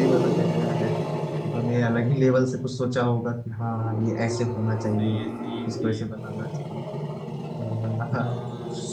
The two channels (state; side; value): identical; both; correlation 1.00